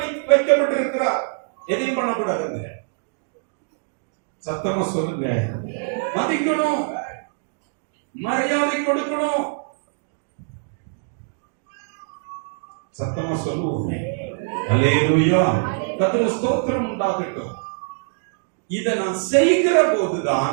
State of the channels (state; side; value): silent; left; digital silence